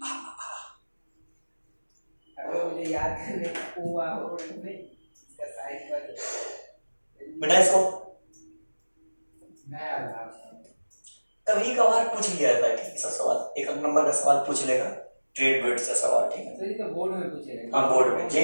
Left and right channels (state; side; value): inverted; both; correlation -1.00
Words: मुझे याद करने हुआ हो इसका साइड पर बेटा इसको नया था। कभी कभार पूछ लिया जाता है, ठीक, सब सवाल 1 नंबर का सवाल पूछ लेगा, ट्रेड वेट्स का सवाल, ठीक है। सर ये तो बोर्ड में पूछेगा। हाँ बोर्ड में,